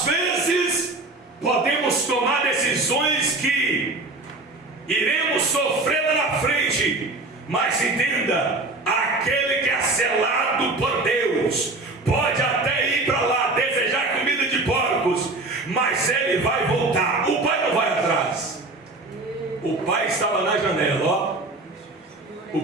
vezes podemos tomar decisões que iremos sofrer lá na frente, mas entenda, aquele que é selado por Deus pode até ir para lá desejar comida de porcos, mas ele vai voltar. O pai não vai atrás. O pai estava na janela, ó.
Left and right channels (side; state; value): left; quieter; 3.1 dB